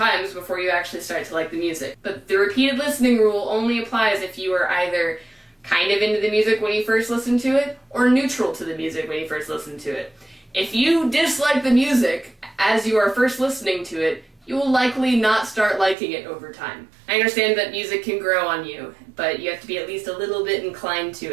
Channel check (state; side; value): drops out; left; at 16.0 s